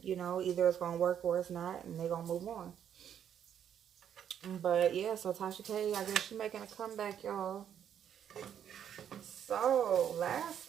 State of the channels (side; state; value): left; quieter; 9.2 dB